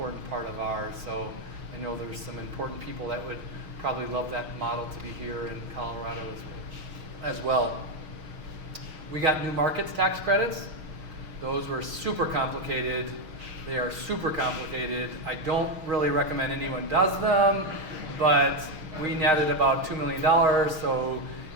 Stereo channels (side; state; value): left; late; 6.4 ms